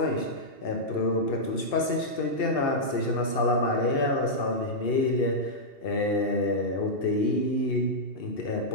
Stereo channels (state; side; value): late; right; 2.7 ms